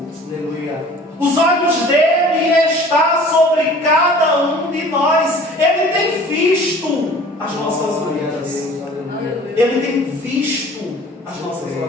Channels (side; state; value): both; normal; correlation 0.47